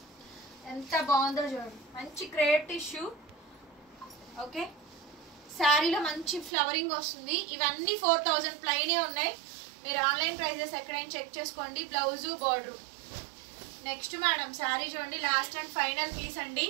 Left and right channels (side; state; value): left; drops out; at 6.5 s